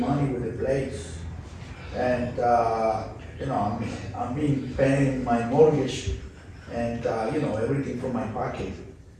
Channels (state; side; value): identical; both; correlation 1.00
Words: with the place. And, you know, I've been paying my mortgage and, you know, everything from my pocket.